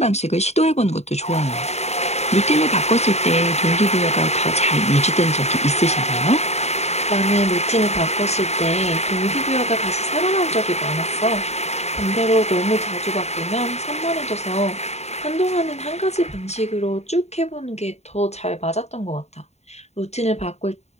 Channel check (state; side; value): late; right; 0.32 ms